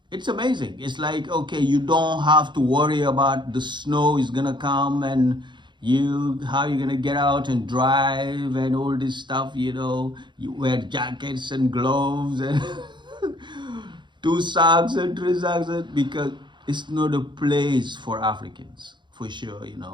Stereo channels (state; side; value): late; left; 0.22 ms